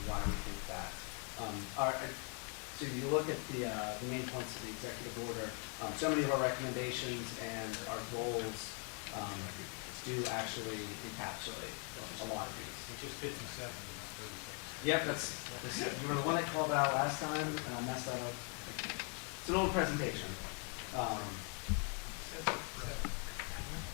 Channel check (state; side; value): quieter; right; 39.4 dB